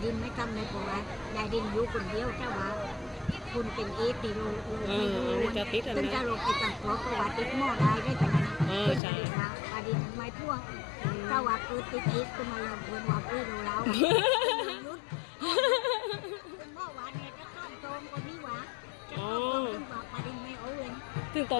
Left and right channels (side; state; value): right; drops out; at 9.0 s